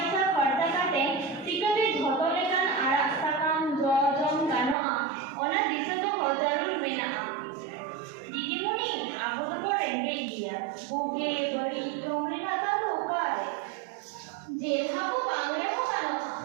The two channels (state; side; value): drops out; left; at 4.8 s